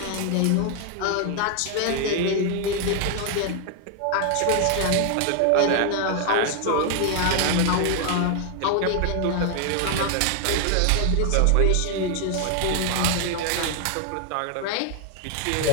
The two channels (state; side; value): different; both; correlation 0.00